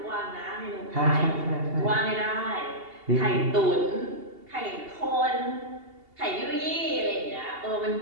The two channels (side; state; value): left; late; 2.8 ms